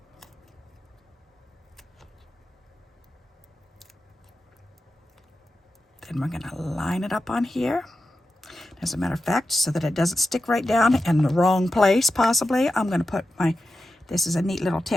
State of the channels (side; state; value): both; normal; correlation 0.91